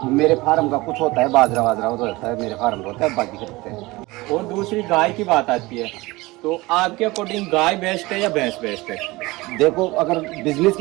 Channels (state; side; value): quieter; left; 21.4 dB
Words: मेरे फार्म का कुछ होता है, बाजरा वाजरा होता है, मेरे फार्म का होता है, बाकी खरीदते हैं। और दूसरी गाय की बात आती है तो आपके अकॉर्डिंग गाय बेस्ट है या भैंस बेस्ट है? देखो अगर बिजनेस